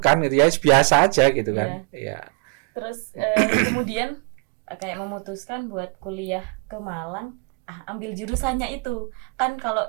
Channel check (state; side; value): quieter; left; 37.0 dB